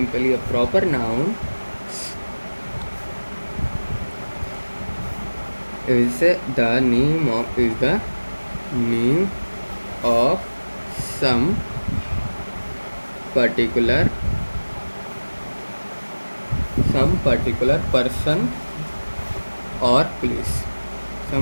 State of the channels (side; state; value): both; inverted; correlation -1.00